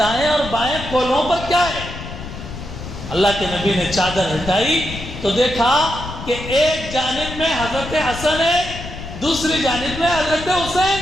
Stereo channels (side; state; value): left; noise; rumble, 10 dB below the sound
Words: اور بائیں کولہوں پر کیا ہے؟ اللہ کے نبی نے چادر ہٹائی تو دیکھا کہ ایک جانب میں حضرت حسن ہے، دوسری جانب میں حضرت حسین